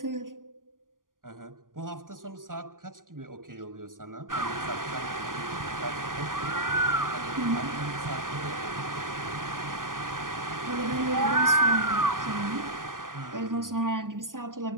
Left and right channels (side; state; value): left; late; 0.90 ms